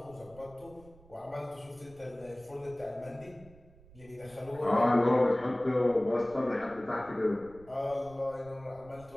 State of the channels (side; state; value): right; noise; rumble, 23 dB below the sound